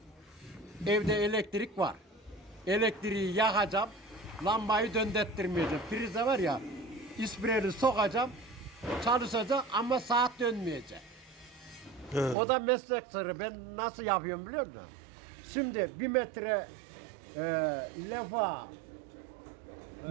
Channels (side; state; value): left; drops out; at 12.4 s